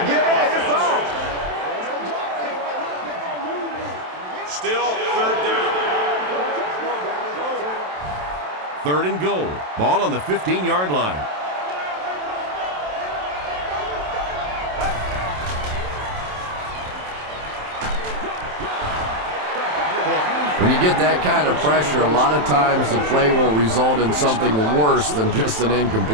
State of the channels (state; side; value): late; left; 27 ms